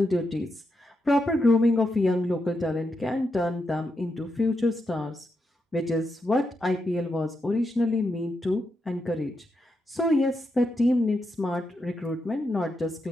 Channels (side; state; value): both; normal; correlation 0.84